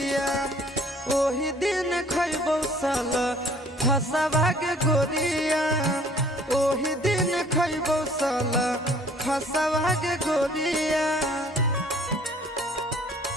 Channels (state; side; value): normal; both; correlation 0.56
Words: ओही दिन खैबौ सल फसवा के गोरिया ओही दिन खैबौ सल फसवा के गोरिया